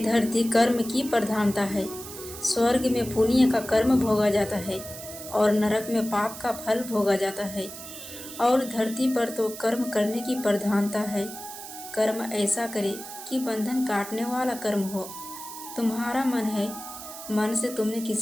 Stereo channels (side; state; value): right; noise; hiss, 12 dB below the sound